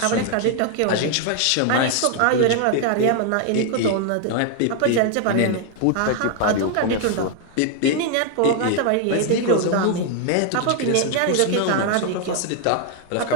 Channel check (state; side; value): different; both; correlation 0.00